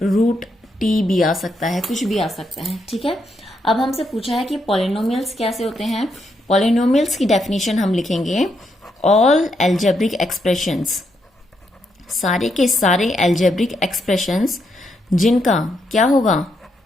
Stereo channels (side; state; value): both; normal; correlation 0.79